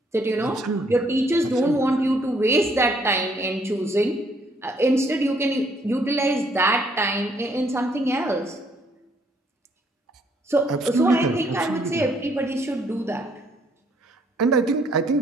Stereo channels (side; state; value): both; normal; correlation 0.67